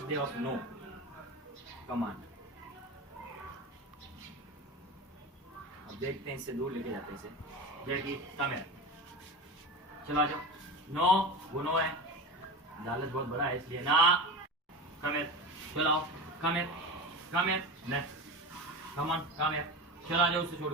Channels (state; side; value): normal; both; correlation 0.26